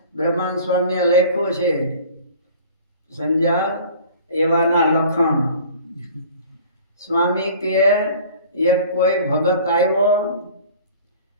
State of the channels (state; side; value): inverted; both; correlation -0.45